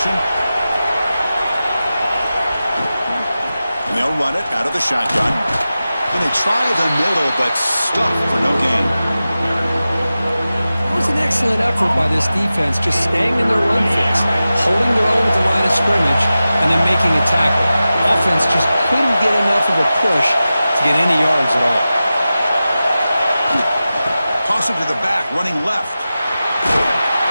And they'll run it out of the shotgun. And they try the middle, but stuck for no gain. It was an excellent effort by this defense, just staying in their run fits, holding their own at the line of scrimmage, and then making a tackle. Offense just couldn't get enough of a push to get any yards at all. Toss it to the back, running left.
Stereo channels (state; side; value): inverted; both; correlation -0.94